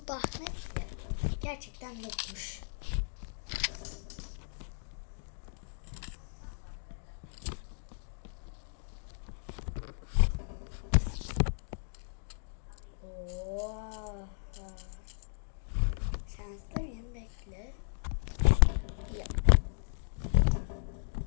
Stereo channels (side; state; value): right; silent; digital silence